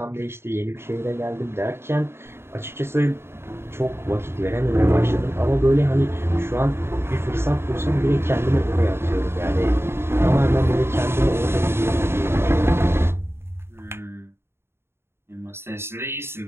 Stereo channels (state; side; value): late; left; 0.12 ms